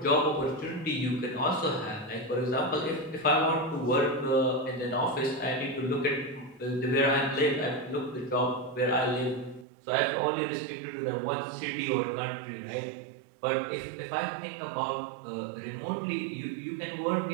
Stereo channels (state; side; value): drops out; left; at 9.7 s